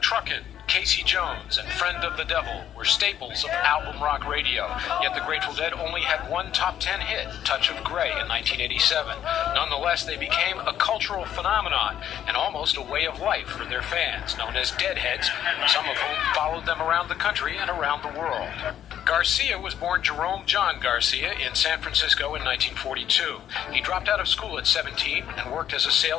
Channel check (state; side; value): quieter; right; 10.5 dB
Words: Truckin', Casey Jones, and Friend of the Devil were staples of album rock radio, yet the Grateful Dead only had one top 10 hit, Touch of Grey, in 1987. Nonetheless, they became a cultural phenomenon and almost a way of life for their fans, known as Deadheads, some of whom followed them around the country and around the world. Garcia was born Jerome John Garcia in San Francisco in 1942. He dropped out of school at 17 and worked as a